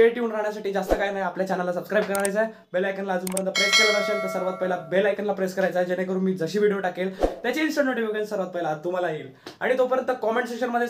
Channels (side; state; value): both; identical; correlation 1.00